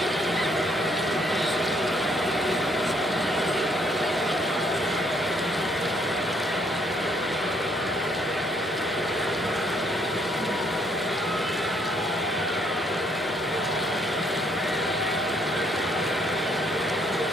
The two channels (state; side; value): normal; both; correlation 0.68